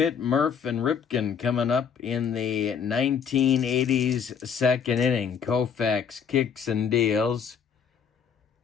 Murph, and Ripken coming up in the 1980s second inning. Koufax kicks and deals.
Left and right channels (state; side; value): quieter; right; 7.0 dB